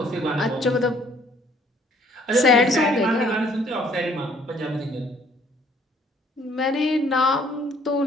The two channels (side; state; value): both; normal; correlation 0.61